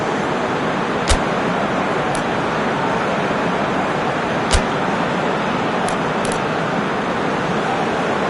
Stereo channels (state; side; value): identical; both; correlation 1.00